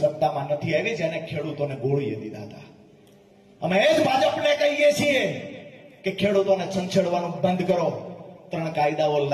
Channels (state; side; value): identical; both; correlation 1.00